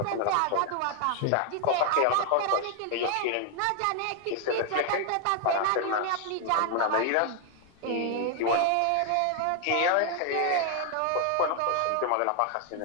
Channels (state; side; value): different; both; correlation 0.00